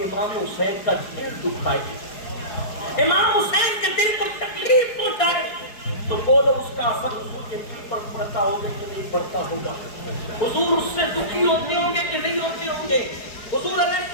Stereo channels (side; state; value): right; late; 4.7 ms